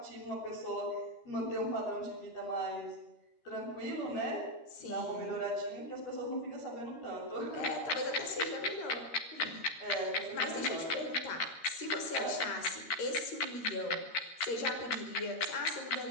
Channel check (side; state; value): right; late; 13 ms